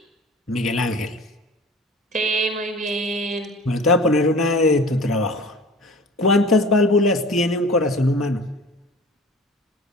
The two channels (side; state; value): both; normal; correlation 0.41